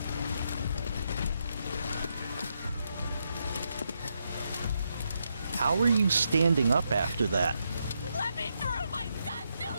How are you standing up after that? Let me through! My son's still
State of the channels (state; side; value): inverted; both; correlation -0.81